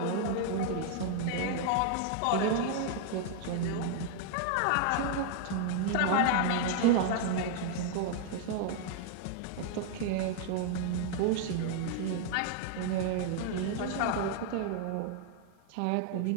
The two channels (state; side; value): different; both; correlation 0.00